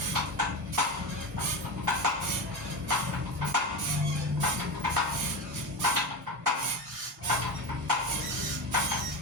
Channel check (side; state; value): both; normal; correlation 0.21